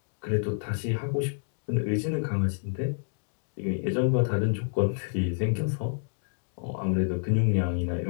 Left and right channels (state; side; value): silent; right; digital silence